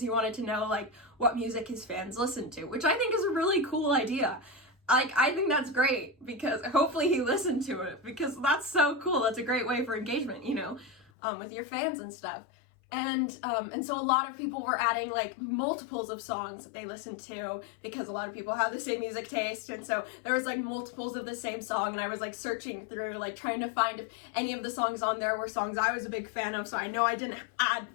wanted to know, like, what music his fans listen to, which I think is a really cool idea. like, I think that's great, because hopefully he listened to it, because that's so cool. That's a great way for engagement, you know, with your fans and stuff. And so a lot of people were adding like multiples of songs that they listened to, because a lot of people have the same music taste, and so there was like multiples of the same song, and I was like searching through, like trying to find if any of the songs on there were songs I was a big fan of, so I know I didn't add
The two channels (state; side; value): drops out; right; at 11.1 s